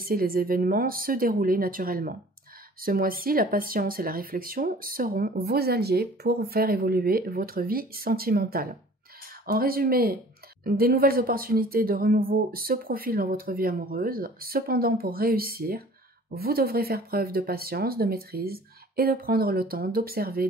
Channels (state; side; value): normal; both; correlation 0.49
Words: les événements se dérouler naturellement. Ce mois-ci, la patience et la réflexion seront vos alliés pour faire évoluer votre vie sentimentale. En résumé, des nouvelles opportunités de renouveau se profilent dans votre vie amoureuse. Cependant, pour réussir, vous devrez faire preuve de patience, de maîtrise et de prendre le temps d'observer